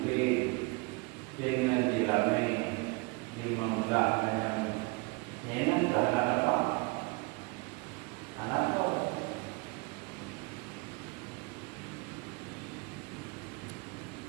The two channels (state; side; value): quieter; left; 26.8 dB